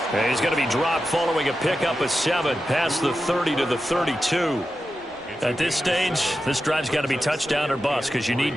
And he's going to be dropped following a pickup of 7 past the 30 to the 32. At this stage, this drive's got to be touchdown or bust because you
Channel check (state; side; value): normal; both; correlation 0.91